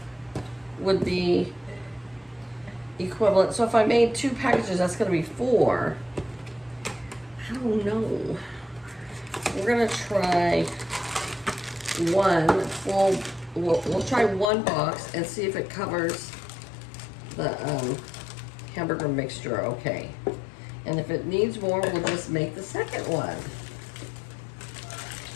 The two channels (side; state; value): right; drops out; at 14.5 s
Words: would be equivalent. So if I made 2 packages, that's gonna be 4. I don't know. We're gonna try one full, we'll try 1 box and see if it covers the hamburger mixture okay. And if it needs more, we'll just make the second one.